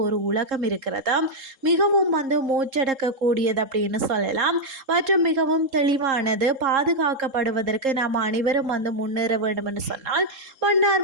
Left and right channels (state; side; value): late; left; 3.7 ms